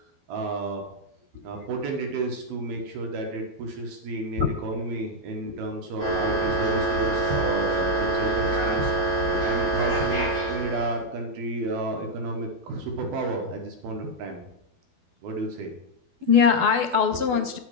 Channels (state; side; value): late; left; 12 ms